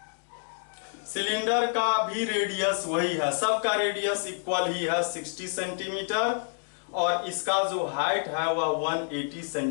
सिलेंडर का भी रेडियस वही है, सबका रेडियस इक्वल ही है 60 सेंटीमीटर, और इसका जो हाइट है वह 180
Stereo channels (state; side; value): silent; right; digital silence